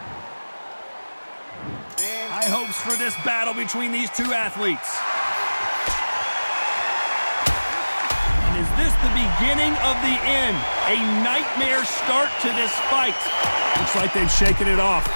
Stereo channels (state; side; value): inverted; both; correlation -1.00